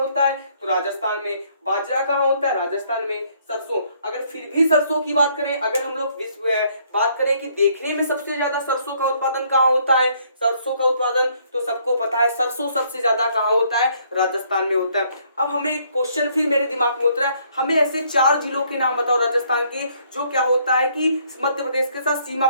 है? तो राजस्थान में। बाजरा कहाँ होता है? राजस्थान में। सरसों, अगर फिर भी सरसों की बात करें, अगर हम लोग बात करें कि देखने में सबसे ज्यादा सरसों का उत्पादन कहाँ होता है? सरसों का उत्पादन तो सबको पता है, सरसों सबसे ज्यादा कहाँ होता है? राजस्थान में होता है। अब हमें क्वेश्चन फिर मेरे दिमाग में उतरा है, हमें ऐसे 4 जिलों के नाम बताओ राजस्थान के, जो क्या होता है कि मध्य प्रदेश के साथ सीमा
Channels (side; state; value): both; inverted; correlation -0.66